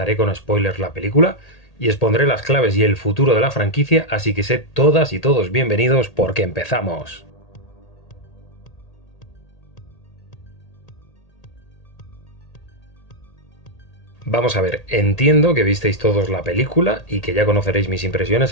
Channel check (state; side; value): late; right; 1.8 ms